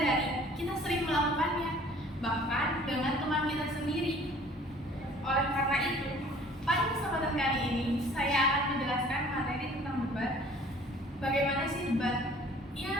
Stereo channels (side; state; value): both; normal; correlation 0.52